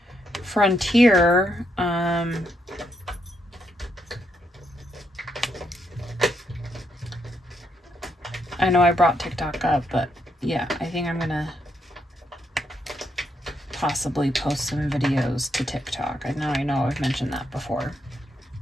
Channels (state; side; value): normal; both; correlation 0.77